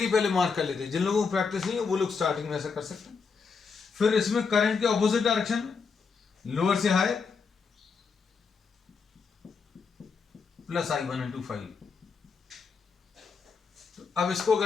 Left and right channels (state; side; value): quieter; right; 5.3 dB